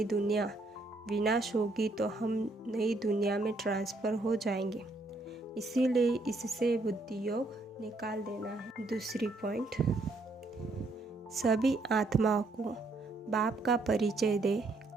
दुनिया विनाश होगी तो हम नई दुनिया में ट्रांसफ़र हो जाएंगे, इसीलिए इससे बुद्धि योग निकाल देना है। दूसरी पॉइंट, सभी आत्माओं को बाप का परिचय दे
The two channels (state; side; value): quieter; left; 3.1 dB